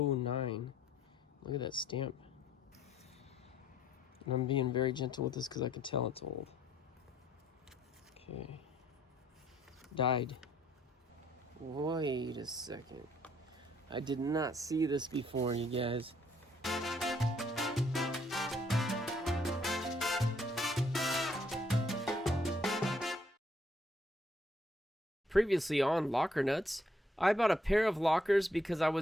Look at that stamp. And I'm being very gentle with this because I can tell it's old. Okay. Died. Wait a second. I did not see this before, you guys. Previously on Locker Nuts, I bought a pair of lockers because I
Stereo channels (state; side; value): normal; both; correlation 0.67